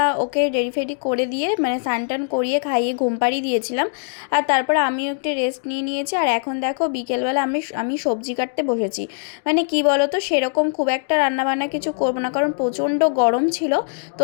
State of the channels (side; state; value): right; silent; digital silence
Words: ওকে রেডি ফেডি করে দিয়ে মানে স্নান টান করিয়ে খাইয়ে ঘুম পাড়িয়ে দিয়েছিলাম। আর তারপরে আমিও একটু রেস্ট নিয়ে নিয়েছি। আর এখন দেখো বিকেলবেলা আমি সবজি কাটতে বসেছি। মানে কি বলো তো, সেরকম খুব একটা রান্নাবান্না কিছু করবো না, কারণ প্রচণ্ড গরম ছিল। তো